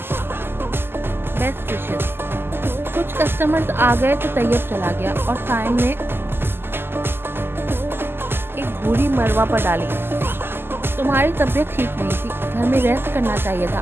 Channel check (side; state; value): left; late; 0.11 ms